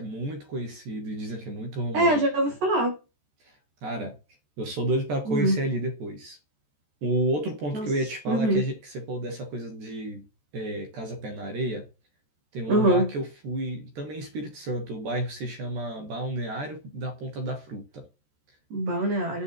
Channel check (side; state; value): left; late; 14 ms